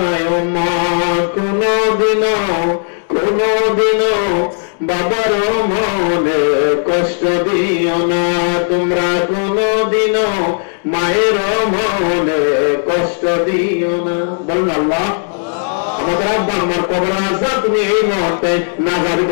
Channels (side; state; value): right; silent; digital silence